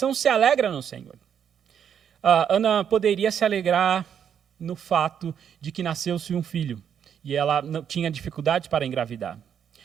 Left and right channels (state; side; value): quieter; left; 8.4 dB